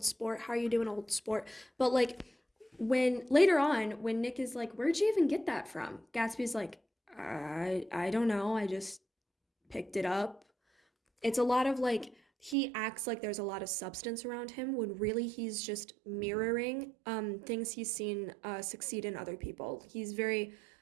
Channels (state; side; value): drops out; left; at 12.6 s